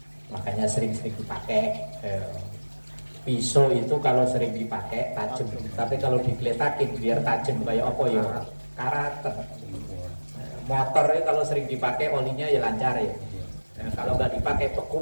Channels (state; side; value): inverted; both; correlation -1.00